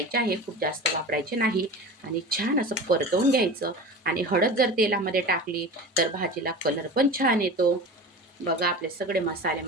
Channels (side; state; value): both; normal; correlation 0.33